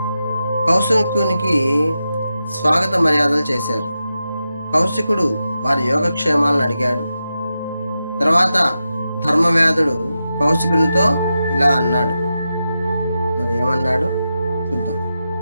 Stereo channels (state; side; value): inverted; both; correlation -0.90